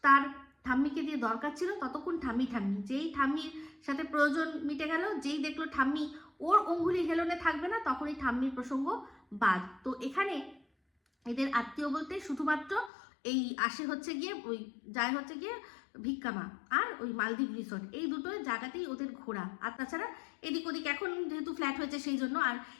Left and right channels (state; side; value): drops out; right; at 12.9 s